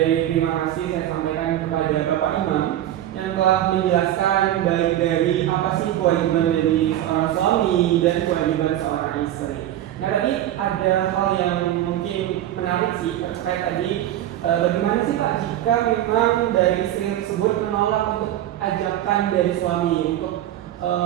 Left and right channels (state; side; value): quieter; left; 12.6 dB